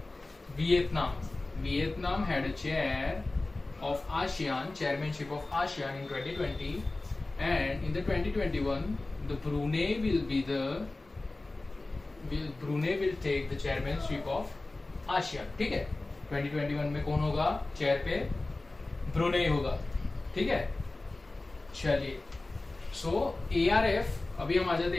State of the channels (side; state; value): right; quieter; 3.1 dB